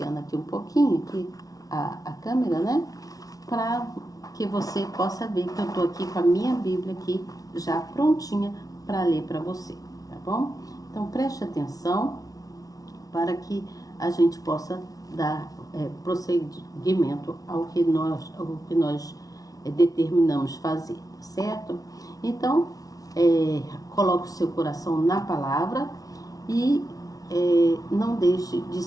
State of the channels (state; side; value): late; right; 0.18 ms